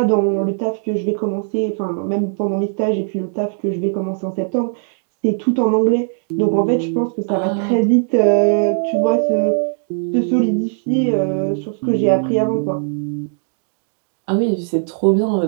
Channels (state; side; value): silent; left; digital silence